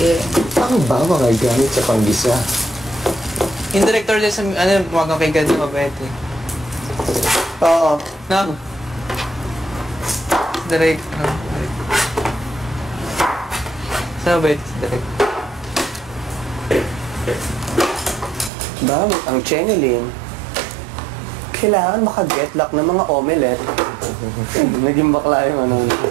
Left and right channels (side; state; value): left; drops out; at 18.5 s